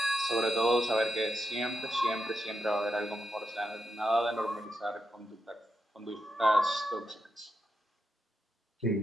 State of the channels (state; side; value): normal; both; correlation 0.86